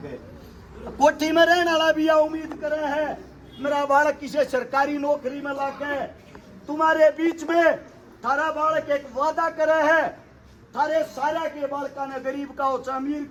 गए। कोठी में रहने वाला भी उम्मीद करे है, मेरा बालक किसी सरकारी नौकरी में लग गए। तुम्हारे बीच में थारा बालक एक वादा करे है, थारे सारा के बालका ने गरीब का हो चाहे अमीर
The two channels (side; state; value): both; identical; correlation 1.00